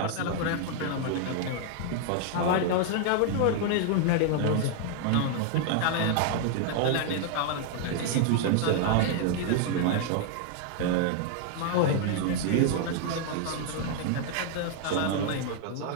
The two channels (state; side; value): different; both; correlation 0.00